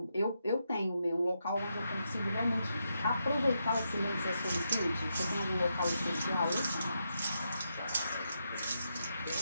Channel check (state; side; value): inverted; both; correlation -0.83